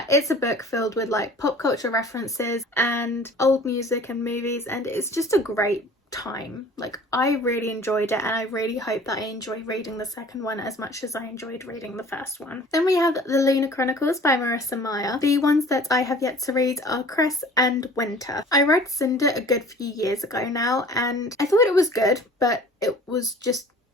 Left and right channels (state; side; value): normal; both; correlation 0.47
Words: It's a book filled with like pop culture references and old music and movies, and it's just a great time. Like, I really enjoyed it, and I really hope that I enjoy reading the second one as much as I enjoyed reading the first one. Then we have the Lunar Chronicles by Marissa Meyer. The ones that I have yet to read are Cress and Winter. I read Cinder a good few years ago now, and I thought it was good, but it was just